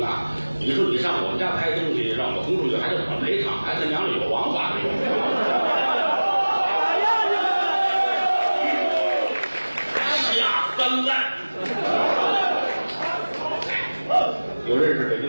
你说你上我们家拍东西，让我轰出去，还得怎么赔偿？还他娘的有王法没有？下三滥。有认识北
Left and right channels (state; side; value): inverted; both; correlation -1.00